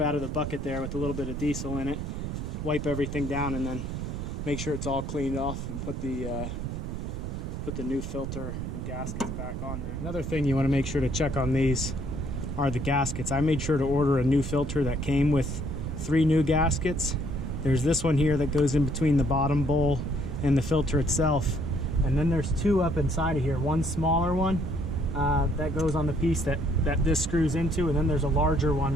out of the bucket there with a little bit of diesel in it, wipe everything down, and then make sure it's all cleaned off and put the new filter and gaskets back on there. Another thing you want to make sure to check on these are the gaskets. I made sure to order a new filter that came with 3 new gaskets. There's this one here that goes in between the bottom bowl and the filter itself. And then there's 2 up inside of here. One smaller one that goes on the piece that this screws into, and then there's a larger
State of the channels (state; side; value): noise; right; rumble, 5 dB below the sound